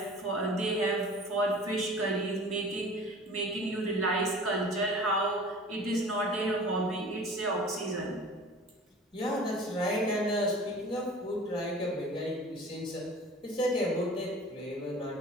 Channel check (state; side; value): normal; both; correlation 0.42